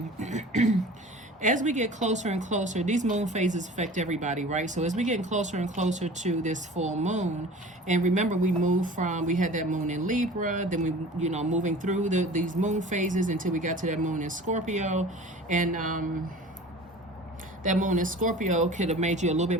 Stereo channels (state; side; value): normal; both; correlation 0.41